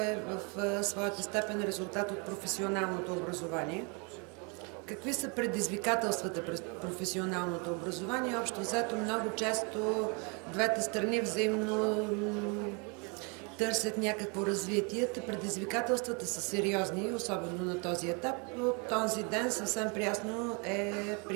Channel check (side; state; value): left; quieter; 33.3 dB